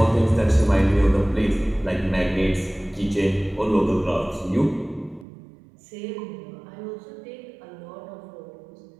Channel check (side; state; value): left; drops out; at 5.2 s